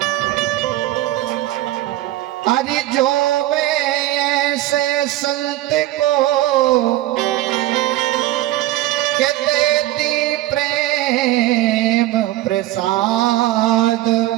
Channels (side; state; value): left; quieter; 15.7 dB